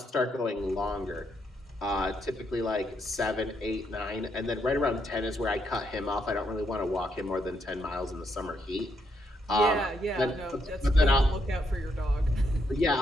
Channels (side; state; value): both; normal; correlation 0.77